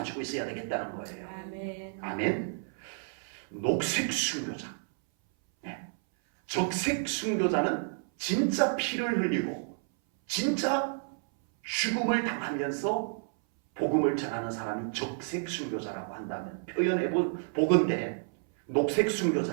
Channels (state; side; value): silent; left; 57 dB below the other